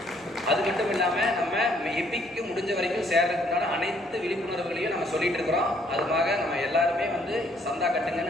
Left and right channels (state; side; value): normal; both; correlation 0.66